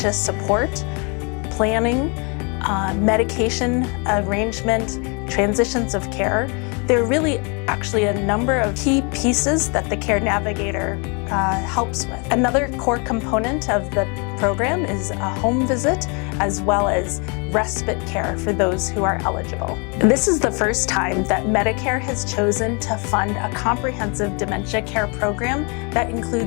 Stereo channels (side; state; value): right; quieter; 34.0 dB